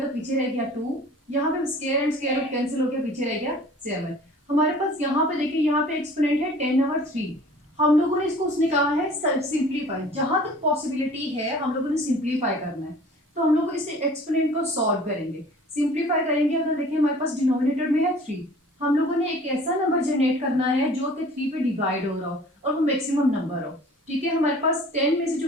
तो पीछे रह गया 2। यहाँ पे square and square root cancel हो गया, पीछे रह गया 7। हमारे पास यहाँ पे देखिए यहाँ पे एक्सपोनेंट है 10/3। हम लोगों ने इसको उसने कहा है सिंप्लीफाई, जहां तक पॉसिबिलिटी है हम लोगों ने सिंप्लीफाई करना है। तो हम लोग इस एक्सपोनेंट को सॉल्व करेंगे, सिंप्लीफाई करेंगे। अगर देखिए हमारे पास डिनोमिनेटर में है 3, हम लोगों ने एक ऐसा नंबर जनरेट करना है जो कि 3 पे डिवाइड हो रहा हो और वो मैक्सिमम नंबर हो। ठीक है, हमारे पास 10 में से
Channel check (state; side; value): normal; both; correlation 0.47